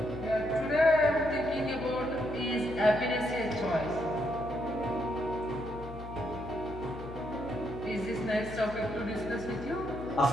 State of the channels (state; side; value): noise; left; hum, 12 dB below the sound